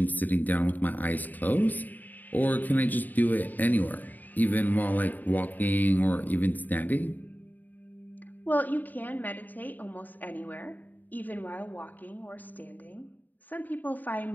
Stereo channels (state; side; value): late; right; 0.085 ms